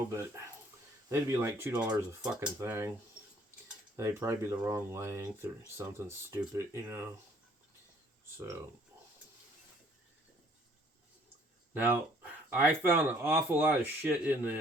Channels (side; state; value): both; normal; correlation 0.60